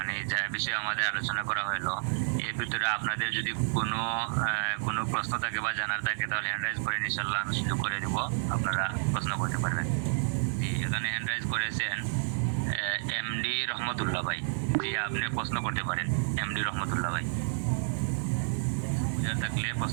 যা বিষয়ে আমাদের আলোচনা করা হলো, এর ভিতরে আপনাদের যদি কোনো প্রশ্ন থাকে বা জানার থাকে তাহলে হ্যান্ড রাইজ করে ইনশাআল্লাহ আমি সুযোগ করে দেব, আপনারা প্রশ্ন করতে পারবেন। এখানে হ্যান্ড রাইজ করেছেন এমডি রহমতুল্লাহ ভাই। জি, আপনি প্রশ্ন করতে পারেন এমডি রহমতুল্লাহ ভাই, বুঝার থাকলে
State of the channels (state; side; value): silent; left; 57 dB below the other